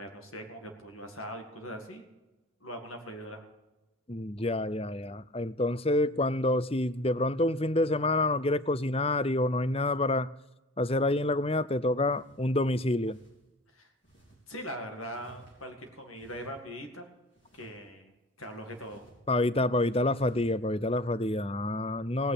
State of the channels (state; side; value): normal; both; correlation 0.42